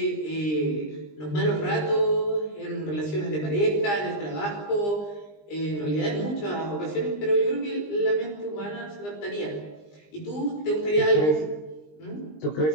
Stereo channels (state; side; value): late; right; 20 ms